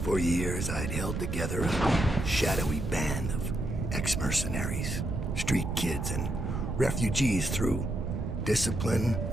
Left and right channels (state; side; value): noise; right; rumble, 2 dB below the sound